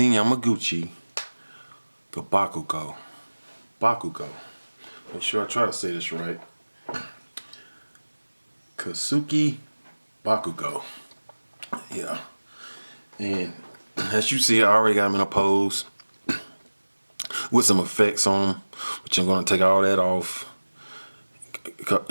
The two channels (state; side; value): inverted; both; correlation -1.00